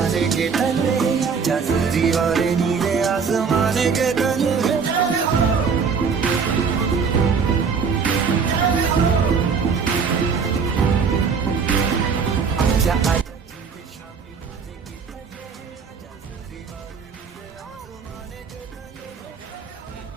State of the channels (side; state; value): left; quieter; 5.8 dB